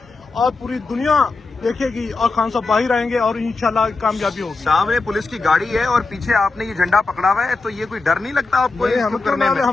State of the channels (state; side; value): quieter; right; 3.8 dB